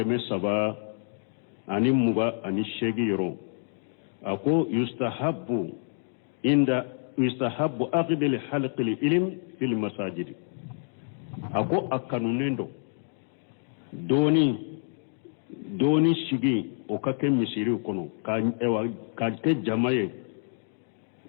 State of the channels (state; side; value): silent; right; digital silence